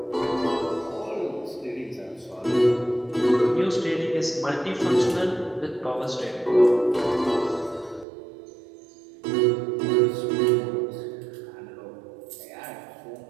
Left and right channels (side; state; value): left; drops out; at 8.1 s